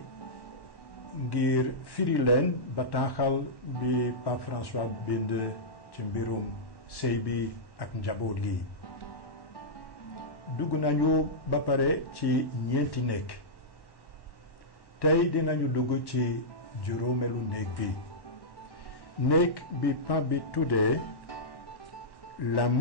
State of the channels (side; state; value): right; late; 1.1 ms